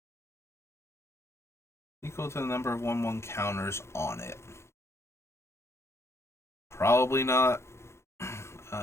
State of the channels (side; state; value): right; late; 0.13 ms